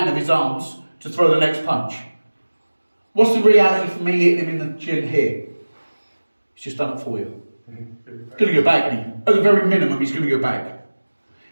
of his arms to throw the next punch. What's the reality for me hitting him in the chin here? He's just done it for you. He's going to go back, isn't he? At the very minimum, he's going to go back.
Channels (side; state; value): both; inverted; correlation -1.00